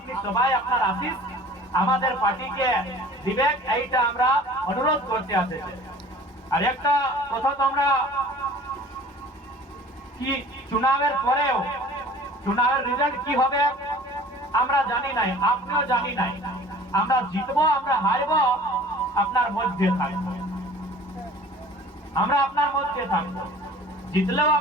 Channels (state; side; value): normal; both; correlation 0.46